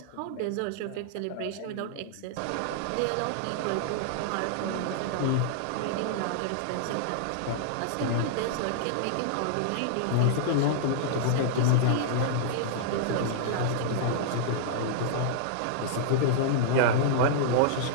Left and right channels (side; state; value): both; different; correlation -0.02